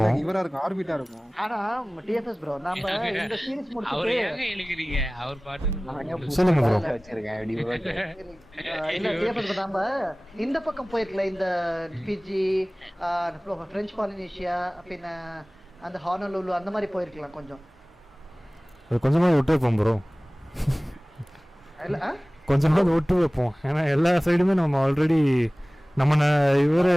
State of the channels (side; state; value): both; normal; correlation 0.98